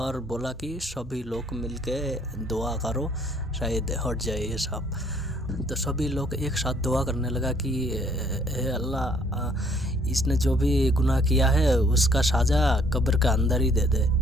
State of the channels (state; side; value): normal; both; correlation 0.63